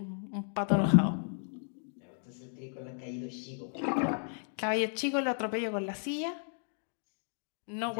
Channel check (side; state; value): right; silent; 55 dB below the other